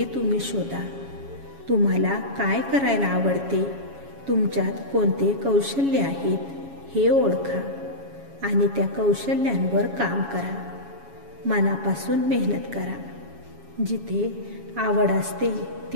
तुम्ही शोधा. तुम्हाला काय करायला आवडते, तुमच्यात कोणते कौशल्य आहेत हे ओळखा आणि त्या कौशल्यांवर काम करा. मनापासून मेहनत करा. जिथे आवड असते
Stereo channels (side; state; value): left; late; 7.2 ms